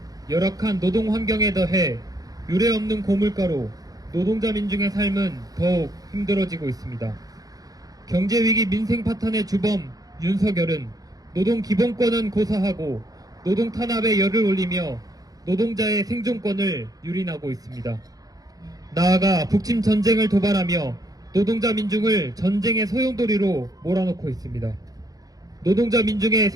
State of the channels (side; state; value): left; late; 0.18 ms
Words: 열악한 노동 환경에 더해 유례없는 고물가로 노동자 민중의 삶은 더욱 힘들어지고 있습니다. 경제위기 민생 파탄의 주범 윤석열은 노동 기본권은 고사하고 노동 탄압에 열을 올리며 노동자의 생존권을 유린하고 있습니다. 나아가 북침 전쟁을 도발하며 노동자 민중을 전쟁의 소용돌이로 몰아넣고 있습니다. 노동자 민중의